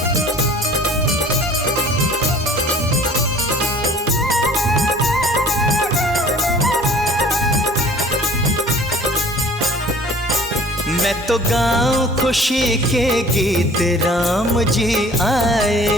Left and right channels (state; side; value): normal; both; correlation 0.49